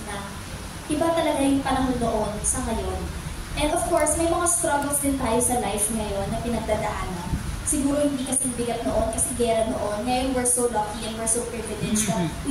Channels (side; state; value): both; identical; correlation 1.00